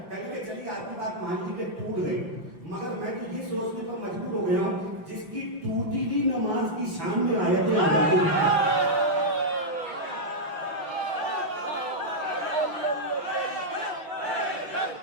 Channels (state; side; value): late; left; 5.7 ms